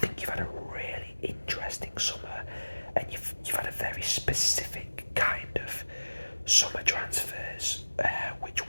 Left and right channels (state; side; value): inverted; both; correlation -1.00